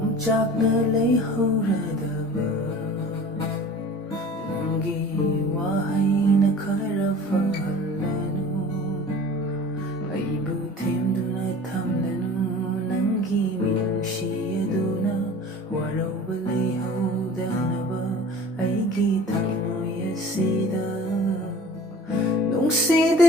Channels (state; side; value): normal; both; correlation 0.42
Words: ꯂꯩꯍꯧꯔꯗꯕ ꯅꯪꯒꯤ ꯋꯥꯍꯩꯅ ꯈꯔ ꯐꯍꯜꯂꯅꯨ ꯑꯩꯕꯨ ꯊꯦꯝꯗꯨꯅ ꯊꯝꯂꯅꯨ ꯅꯪꯒꯤ ꯃꯤꯅꯨꯡꯁꯤ ꯑꯗꯨꯅ ꯋꯥꯔꯧꯕ ꯂꯩꯍꯧꯗꯅꯕ ꯑꯩꯒꯤ ꯊꯃꯣꯏ ꯑꯁꯤꯗ